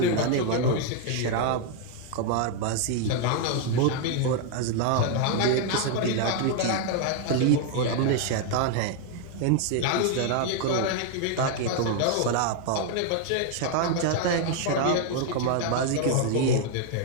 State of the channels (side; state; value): both; different; correlation 0.00